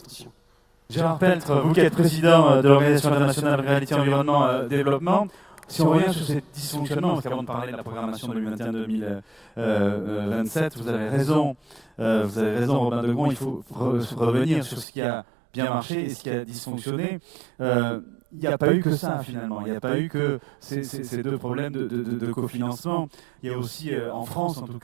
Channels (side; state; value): left; drops out; at 14.9 s